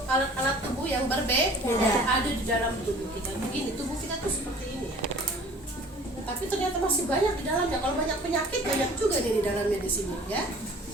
alat-alat tubuh yang berbeda ada di dalam tubuh kita. Begini, tubuh kita tuh seperti ini ya. Tapi ternyata masih banyak di dalamnya. Kalau banyak penyakit banyak juga nih di dalamnya di sini ya.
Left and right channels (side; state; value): both; normal; correlation 0.48